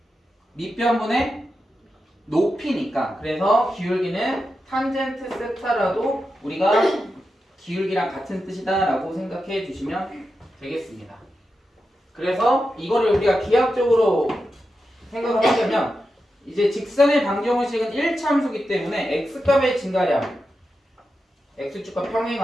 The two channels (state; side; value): normal; both; correlation 0.89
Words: 밑변분의 높이니까. 그래서 기울기는 탄젠트 세타라도 우리가 기울기랑 같은 뜻이다 라고 생각해 주시면 되겠습니다. 그래서 이거를 우리가 기하학적으로 생각을 하려면 이제 직선의 방정식은 1차 함수기 때문에 x값의 증가량, x축과